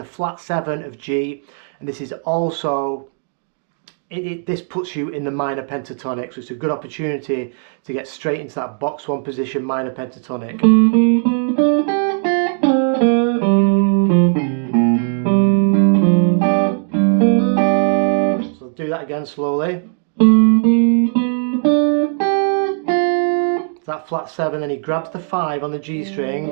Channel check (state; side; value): silent; left; 58 dB below the other